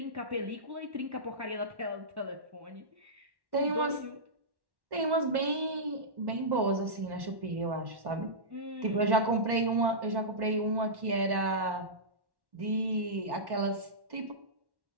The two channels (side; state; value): left; late; 1.1 ms